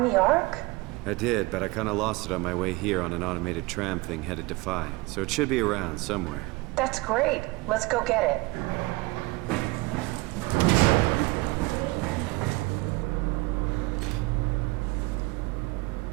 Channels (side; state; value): left; quieter; 22.9 dB